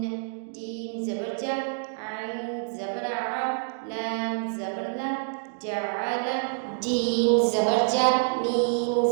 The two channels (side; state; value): left; silent; 60 dB below the other